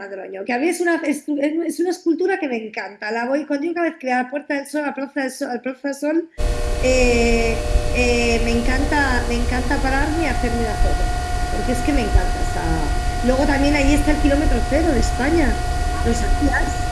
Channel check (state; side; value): identical; both; correlation 1.00